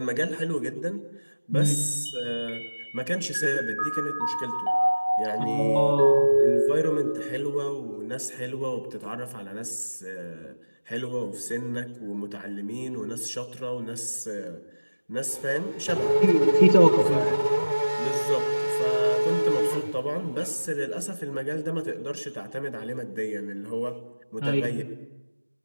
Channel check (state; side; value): inverted; both; correlation -1.00